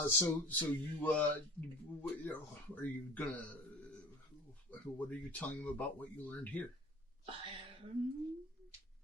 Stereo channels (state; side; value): normal; both; correlation 0.42